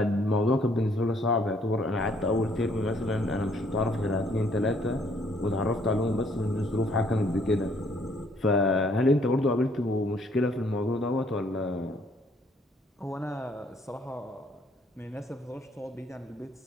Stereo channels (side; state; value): both; normal; correlation 0.65